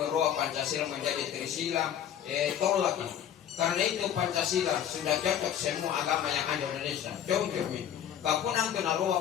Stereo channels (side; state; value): right; quieter; 9.8 dB